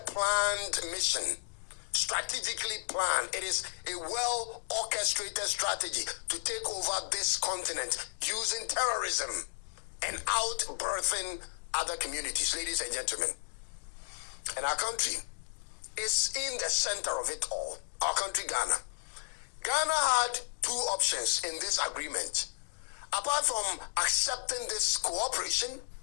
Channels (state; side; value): silent; right; digital silence